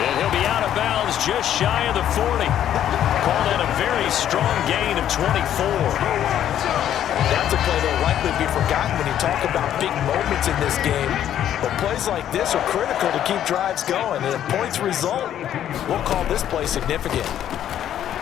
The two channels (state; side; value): quieter; right; 10.8 dB